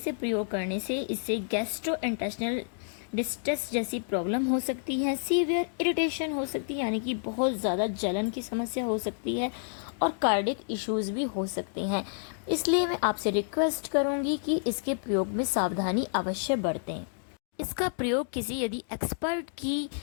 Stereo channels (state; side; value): silent; right; digital silence